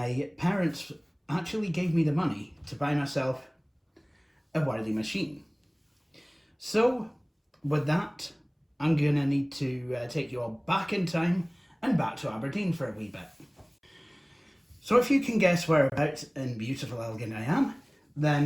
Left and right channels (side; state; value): both; identical; correlation 1.00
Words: parents actually gave me the money to buy myself a worthy machine. So, with that, I'm gonna need to take you all back in time and back to Aberdeen for a wee bit. So if you can guess whereabouts in beautiful Elgin I am,